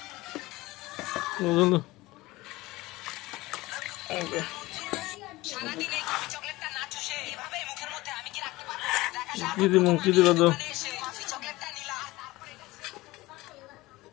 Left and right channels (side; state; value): right; quieter; 19.6 dB